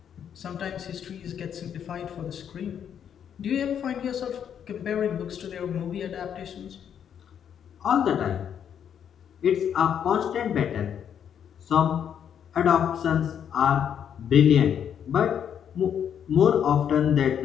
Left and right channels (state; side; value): quieter; right; 8.7 dB